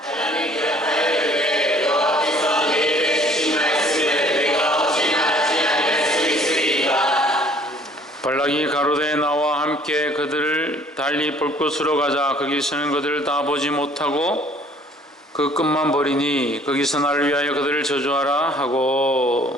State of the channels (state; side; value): normal; both; correlation 0.56